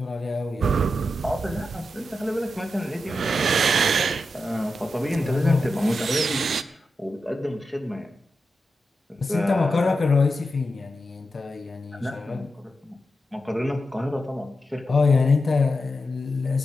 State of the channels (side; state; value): both; normal; correlation 0.88